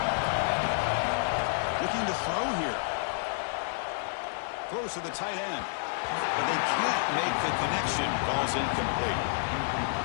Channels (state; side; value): silent; right; digital silence